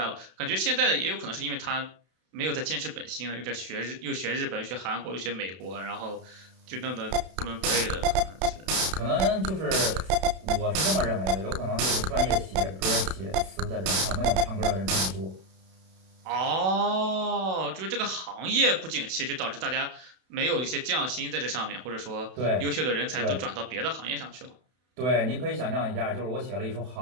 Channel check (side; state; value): left; late; 32 ms